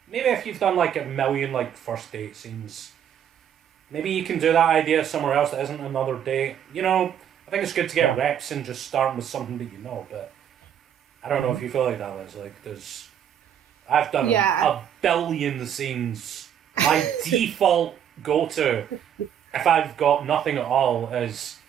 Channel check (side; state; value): left; quieter; 9.3 dB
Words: Maybe if you've done like a million like first date scenes, maybe you can do that idea somewhere else that isn't another date. You know, I think it's good to get reps and just starting with something that you know. But I don't know if you feel like that, Liz. Like I've done a billion scenes. My default go-to, if I've got nothing at all, is